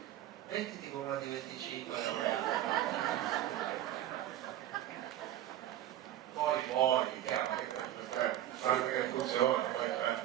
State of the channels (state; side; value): quieter; left; 12.5 dB